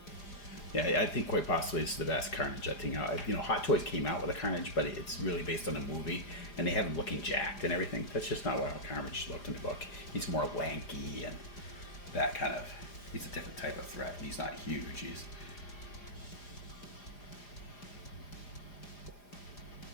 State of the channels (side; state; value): right; late; 4.9 ms